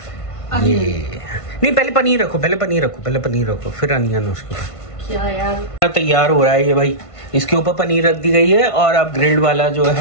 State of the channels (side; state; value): right; late; 1.5 ms